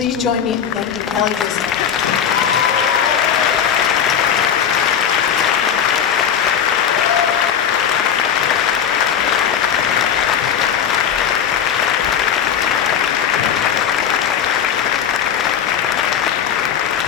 join me in thanking Kelly Driscoll.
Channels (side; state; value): right; quieter; 8.4 dB